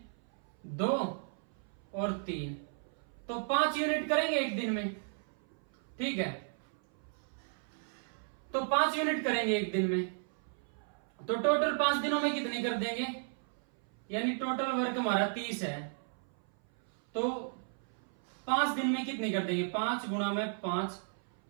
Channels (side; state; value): left; silent; 55 dB below the other